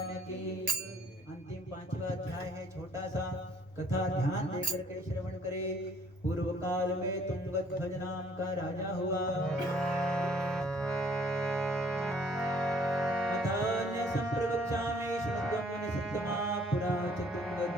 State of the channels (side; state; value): both; normal; correlation 0.59